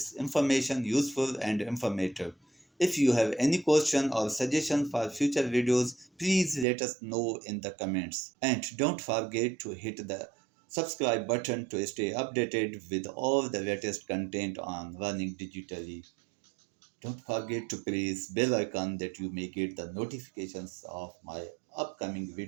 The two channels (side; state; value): left; drops out; at 6.7 s